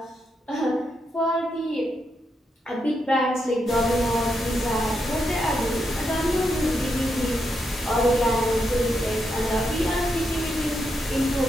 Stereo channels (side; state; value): both; normal; correlation 0.82